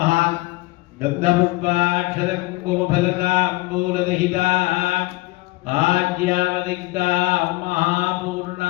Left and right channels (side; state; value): right; quieter; 21.2 dB